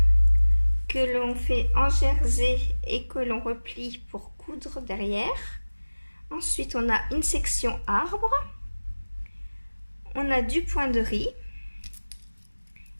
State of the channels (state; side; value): inverted; both; correlation -1.00